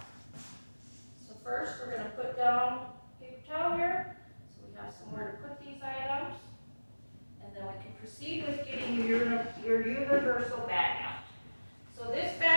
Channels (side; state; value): both; inverted; correlation -1.00